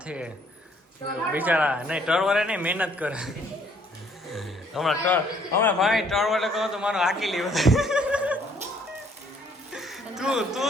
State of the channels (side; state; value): both; normal; correlation 0.64